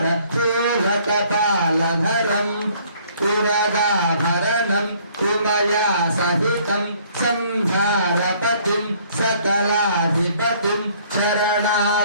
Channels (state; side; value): inverted; both; correlation -0.60